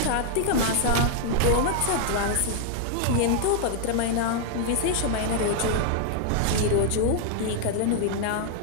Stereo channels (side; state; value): both; different; correlation 0.00